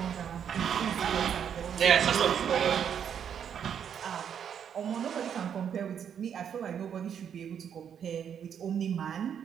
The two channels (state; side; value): quieter; left; 8.3 dB